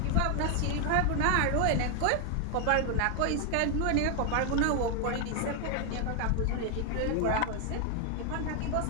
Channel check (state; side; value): different; both; correlation 0.00